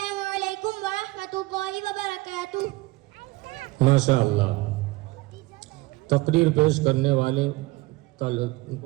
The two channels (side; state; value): left; quieter; 20.9 dB